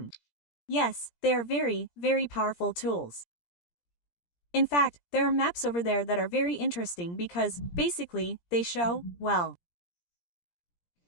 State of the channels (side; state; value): right; late; 17 ms